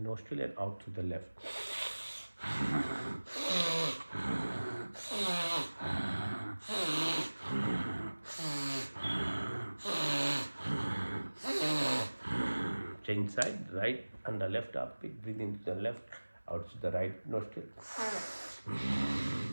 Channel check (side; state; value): both; inverted; correlation -1.00